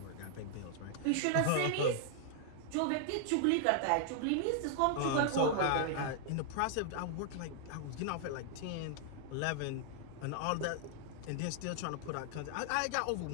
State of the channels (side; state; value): both; different; correlation 0.00